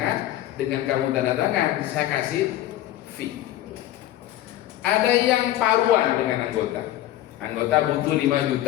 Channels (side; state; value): right; quieter; 13.9 dB